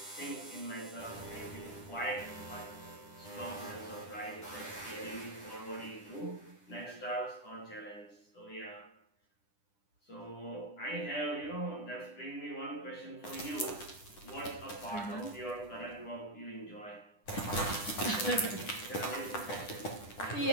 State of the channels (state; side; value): late; right; 10 ms